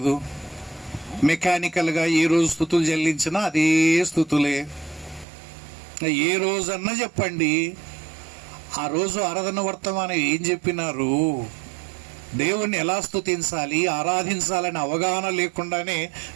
మెకానికల్గా ఏ రోజు స్తుతులు చెల్లించినా అదే స్తుతులే. ఏ రోజన్నా చెప్పండి, ఆ రోజు ఆరాధన వర్తమానం ఏం చెప్పినారు? దేవుణ్ణి ఎలా స్తుతించాలి, ఆరాధించాలని అవగాహన లేకుండానే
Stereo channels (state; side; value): drops out; left; at 5.2 s